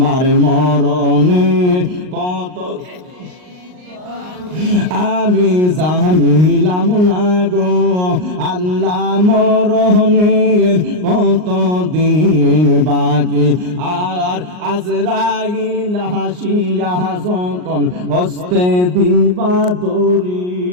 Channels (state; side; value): late; left; 39 ms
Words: মরণের কত আমি জানিলাম না গো আল্লাহ, মরণের কতদিন বাকি। আর আজরাইল হাসিয়া যখন হস্তে দিবা দড়ি,